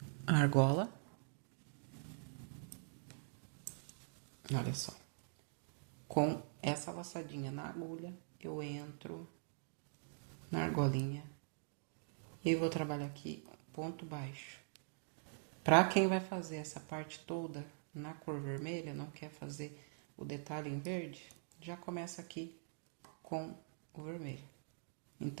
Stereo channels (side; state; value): left; silent; digital silence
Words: a argola. Olha só. Com essa laçadinha na agulha, eu entro na argolinha e vou trabalhar aqui ponto baixo. Para quem vai fazer essa parte toda na cor vermelha, não quer fazer o detalhe em verde, já começa aqui com o vermelho.